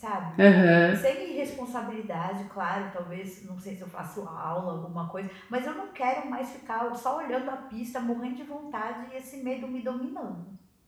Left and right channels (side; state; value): both; identical; correlation 1.00